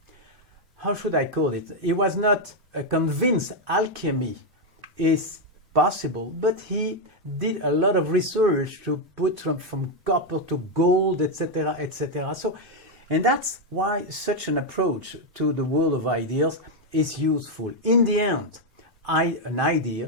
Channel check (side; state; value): both; normal; correlation 0.02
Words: how should I call it? He was not convinced alchemy is possible, but he did a lot of research to put from copper to gold, etc., etc. So, and that's why such an approach to the world of ideas is useful. In the end, an